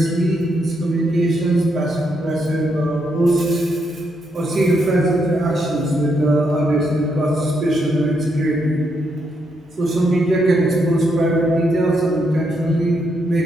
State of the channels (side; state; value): both; normal; correlation 0.78